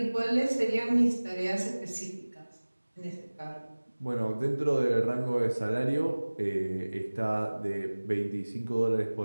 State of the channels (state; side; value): inverted; both; correlation -1.00